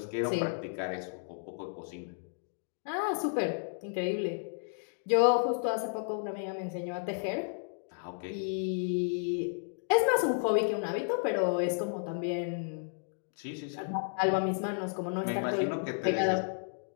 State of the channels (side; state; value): right; silent; digital silence